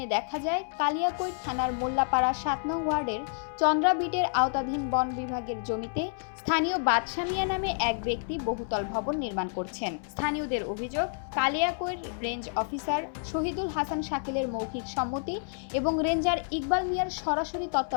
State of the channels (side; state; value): right; silent; 58 dB below the other